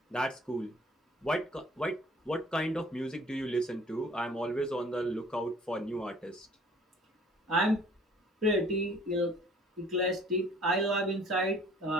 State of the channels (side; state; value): both; normal; correlation 0.53